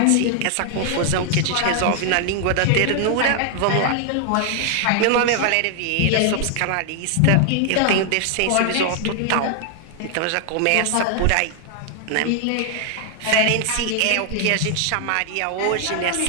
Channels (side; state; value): both; different; correlation 0.00